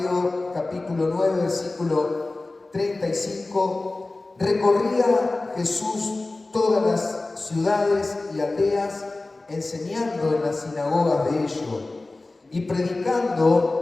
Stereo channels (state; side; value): quieter; right; 3.1 dB